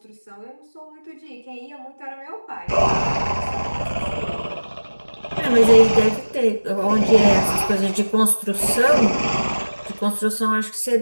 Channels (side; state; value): both; inverted; correlation -1.00